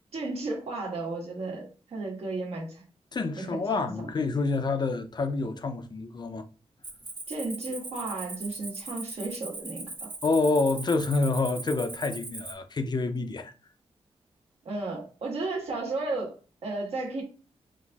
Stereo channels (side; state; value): both; normal; correlation 0.69